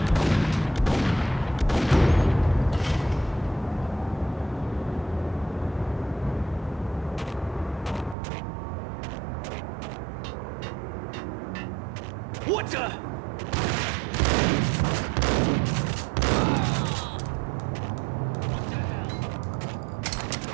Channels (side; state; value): left; drops out; at 8.2 s